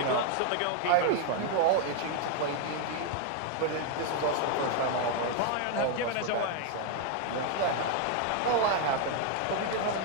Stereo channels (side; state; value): both; different; correlation 0.01